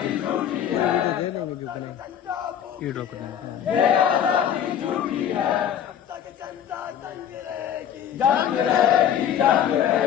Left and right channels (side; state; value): right; quieter; 9.4 dB